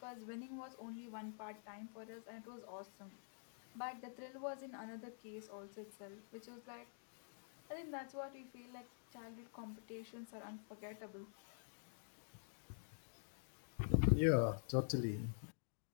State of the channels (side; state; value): right; silent; digital silence